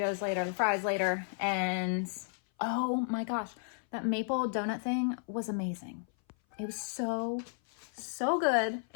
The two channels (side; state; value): right; silent; 56 dB below the other